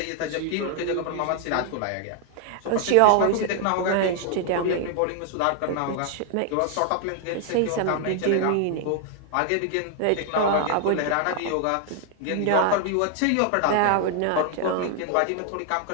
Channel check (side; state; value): both; different; correlation 0.00